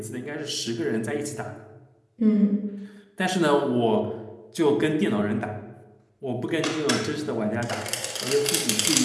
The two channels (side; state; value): both; identical; correlation 1.00